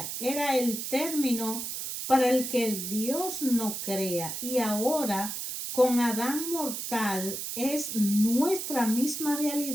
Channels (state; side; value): noise; right; hiss, 5 dB below the sound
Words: era el término para el que el Dios no crea, y ahora con Adán mortal es nuestra misma